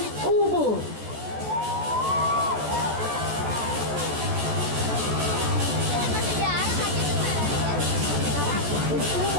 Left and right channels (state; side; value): late; left; 14 ms